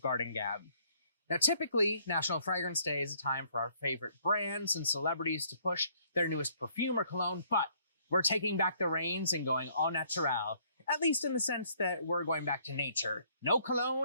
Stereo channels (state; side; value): inverted; both; correlation -0.65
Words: Garden Gab. Now typically, National Fragrance Day is a time for our favorite brands and celebrities to push their newest perfume or cologne, but we're taking back the reins and going au naturel, at least in the sense that we're going back to nature. No